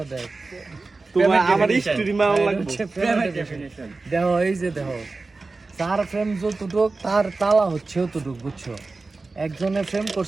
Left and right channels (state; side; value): quieter; left; 3.7 dB